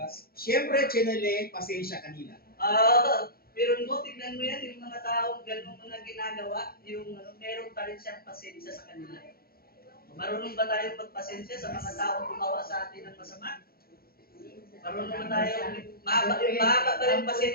Siyempre, chinele, pasensya kanila. Pero mo, tignan mo yan, yung mga taong ganun mga ginagawa, meron pa rin siyang pasensya sa kanila. Marunong ba tayo magpasensya sa mga taong gumawa sa atin ng masama? Marunong ba tayo, mahaba pa rin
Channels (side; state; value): right; late; 0.44 ms